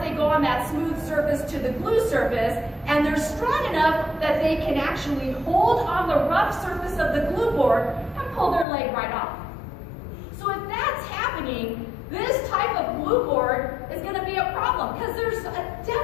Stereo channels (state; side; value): drops out; right; at 8.7 s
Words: they go on that smooth surface to the glue surface, and they're strong enough that they can actually hold on the rough surface of the glue board and pull their leg right off. So if that's happening, this type of glue board is going to be a problem, because there's a